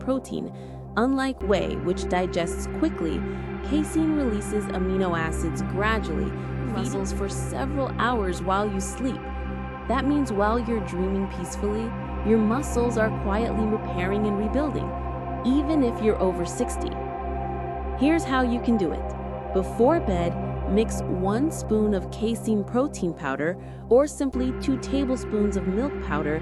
Unlike whey, which digests quickly, casein releases amino acids gradually, muscles for several hours while you sleep. That means while you're dreaming peacefully, your muscles are quietly repairing and rebuilding, even if you're over 60. Here's how you can do it. Before bed, mix 1 spoon of casein protein powder or simply 2 tablespoons of milk powder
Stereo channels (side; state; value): both; identical; correlation 1.00